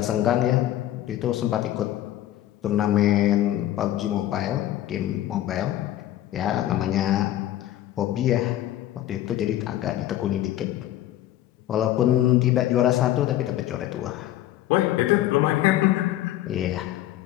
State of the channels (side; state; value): right; quieter; 13.5 dB